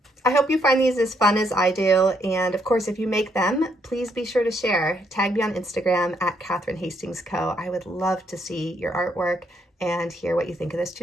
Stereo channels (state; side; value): normal; both; correlation 0.73